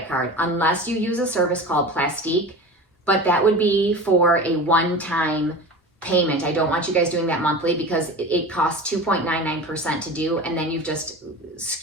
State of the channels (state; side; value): normal; both; correlation 0.33